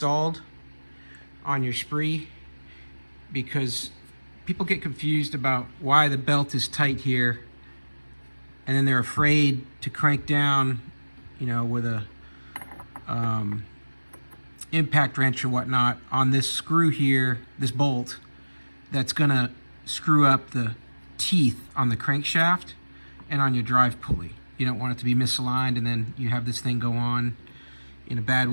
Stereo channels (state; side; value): inverted; both; correlation -1.00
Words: on your spree, because people get confused about why the belt is tight here, and then they're afraid to crank down, with a impact wrench or whatnot on this screw here, this bolt, that's gonna screw up the teeth on the crankshaft and on your drive pulley. You don't want it to be misaligned and then you have this thing go on in a bad